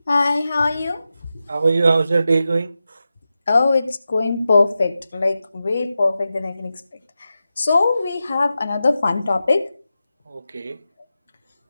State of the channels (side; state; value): both; inverted; correlation -0.91